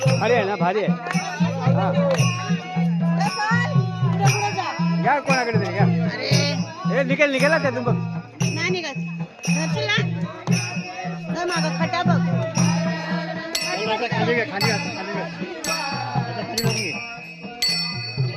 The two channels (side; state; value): both; identical; correlation 1.00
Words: भारी आहे ना, भारी आहे. हा. घ्या कोणाकडे तरी घ्या. हे निघेल ना त्यातून बघ. नाही निघत. मागं खटा बघ. खाली घे, खाली घे.